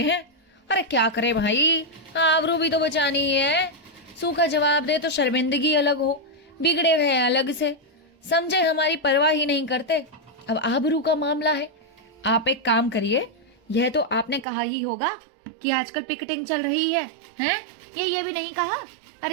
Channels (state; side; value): drops out; left; at 14.5 s